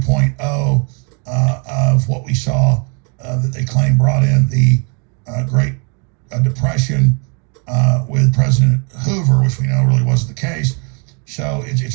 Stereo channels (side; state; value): left; quieter; 35.7 dB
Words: of what we saw that they claim brought in the Great Depression with President Hoover, which we know really wasn't the case. So